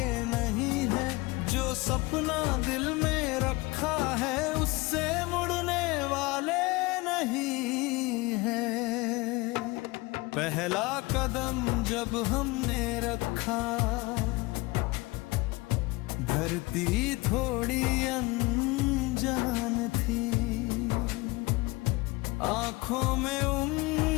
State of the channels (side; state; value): right; quieter; 23.0 dB